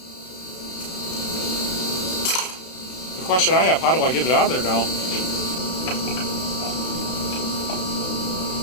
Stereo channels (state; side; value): late; right; 32 ms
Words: The question I have, how do I get it out of there now?